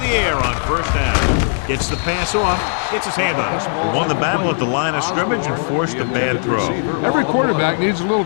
air on first down. Gets the pass off. Gets his hand on it. He won the battle at the line of scrimmage and forced a bad throw. Every quarterback needs a little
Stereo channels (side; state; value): right; silent; 67 dB below the other